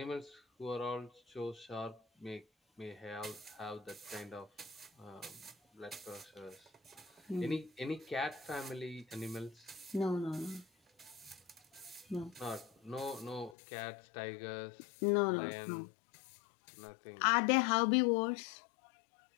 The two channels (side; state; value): right; drops out; at 13.6 s